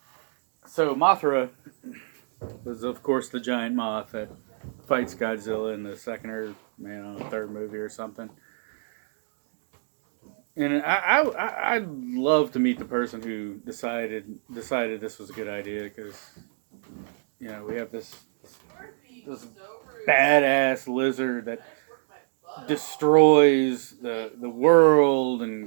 So Mothra was, of course, the giant moth that fights Godzilla in the second or third movie or something. And I'd love to meet the person who decided this was a good idea, because we have this badass lizard that destroys the world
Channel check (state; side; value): silent; left; digital silence